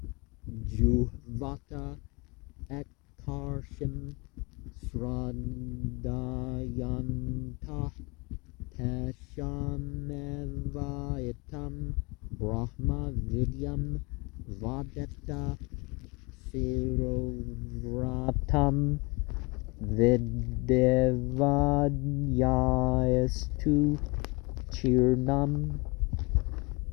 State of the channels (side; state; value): right; quieter; 27.4 dB